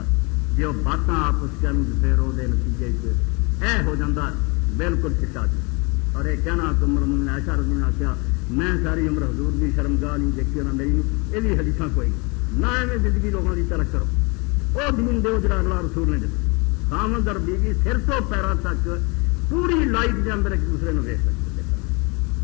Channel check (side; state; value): right; quieter; 29.7 dB